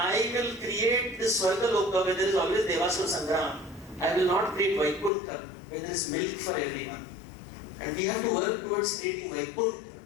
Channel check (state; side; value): drops out; right; at 5.1 s